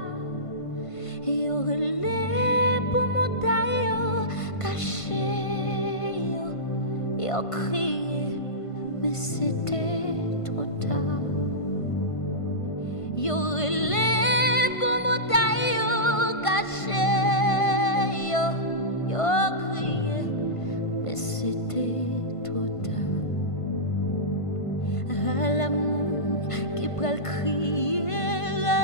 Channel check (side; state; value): right; late; 1.5 ms